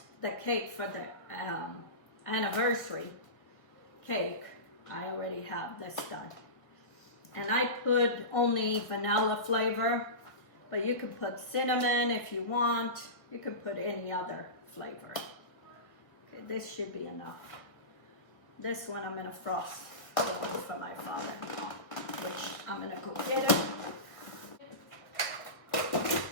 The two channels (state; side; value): late; right; 1.5 ms